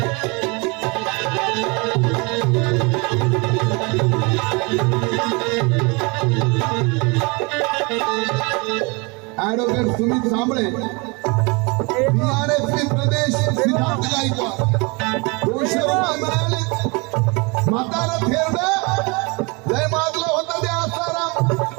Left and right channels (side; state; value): left; quieter; 28.9 dB